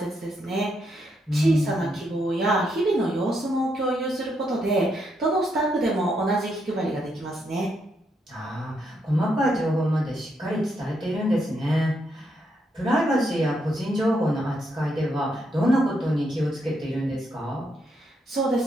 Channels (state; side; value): normal; both; correlation 0.78